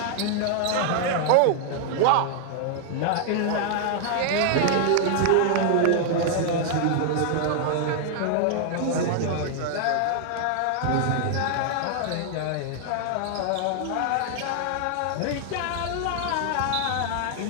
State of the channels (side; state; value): both; different; correlation 0.00